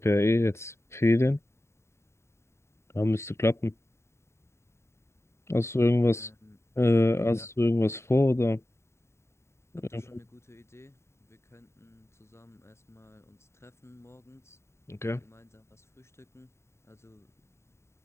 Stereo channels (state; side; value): late; right; 0.13 ms